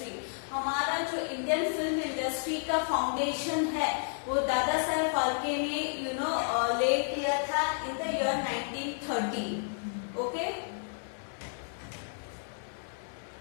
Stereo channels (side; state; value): right; silent; 57 dB below the other